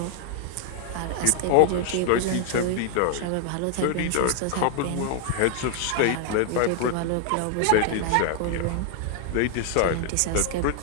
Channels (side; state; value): both; different; correlation 0.00